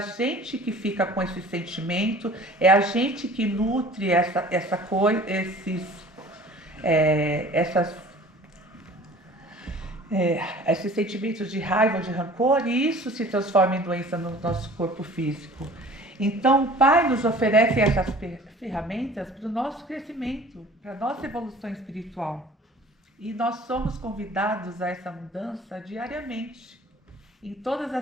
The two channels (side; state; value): both; normal; correlation 0.46